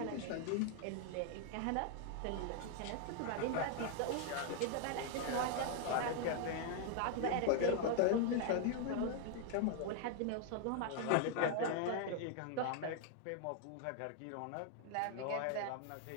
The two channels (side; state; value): both; different; correlation 0.00